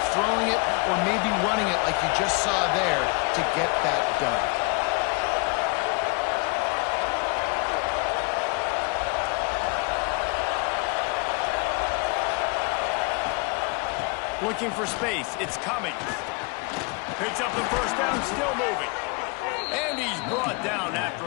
throwing it or maybe running it like you just saw there to get that done. Looking for space. It's coming. Picks up the first down, still moving. And he's brought down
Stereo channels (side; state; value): right; quieter; 29.6 dB